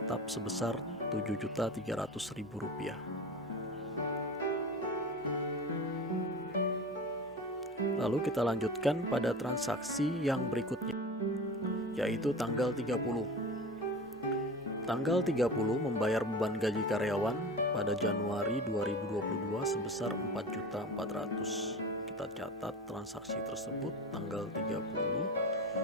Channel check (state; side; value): normal; both; correlation 0.31